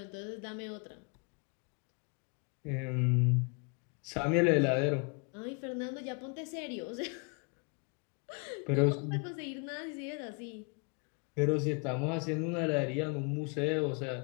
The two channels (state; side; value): quieter; right; 35.4 dB